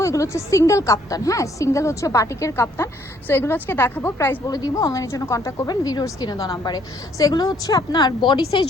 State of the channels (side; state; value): both; normal; correlation 0.65